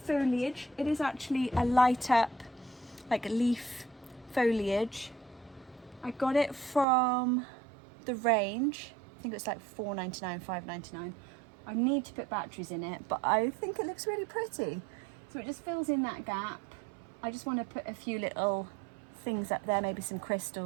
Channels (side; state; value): left; drops out; at 6.9 s